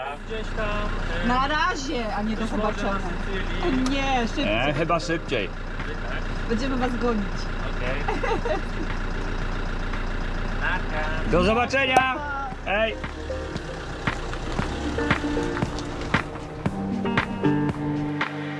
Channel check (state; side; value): identical; both; correlation 1.00